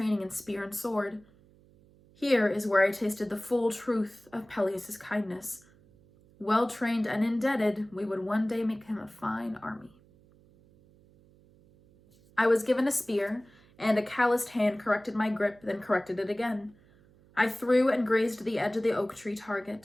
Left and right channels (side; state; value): right; noise; hum, 28 dB below the sound